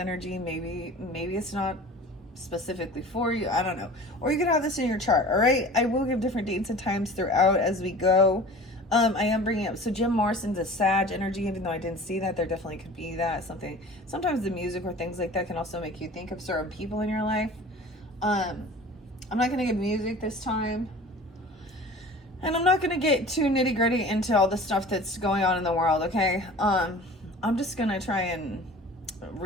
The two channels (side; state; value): both; normal; correlation 0.42